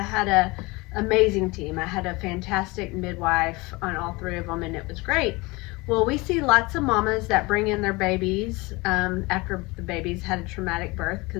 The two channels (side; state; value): right; quieter; 24.0 dB